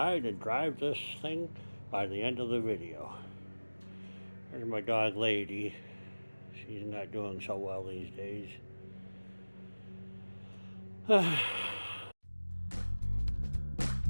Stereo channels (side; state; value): both; inverted; correlation -1.00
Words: and drive this thing by the end of the video. There's my dog Lady. She's not doing so well these days.